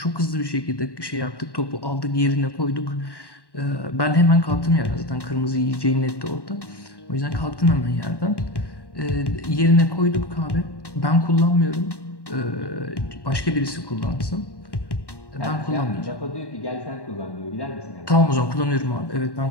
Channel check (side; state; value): right; late; 1.1 ms